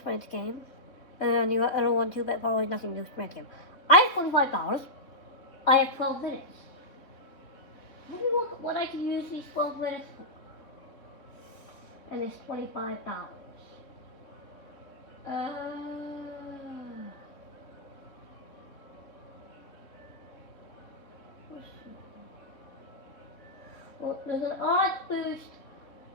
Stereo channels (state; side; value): late; right; 3.5 ms